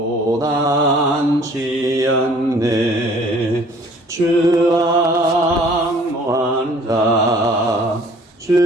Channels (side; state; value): both; normal; correlation 0.54